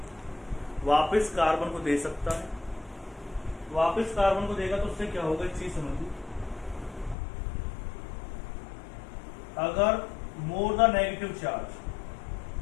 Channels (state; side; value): drops out; right; at 7.2 s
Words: वापस कार्बन को दे सकता है। वापस कार्बन को देगा तो उससे क्या होगा, एक चीज समझिए, अगर more the negative charge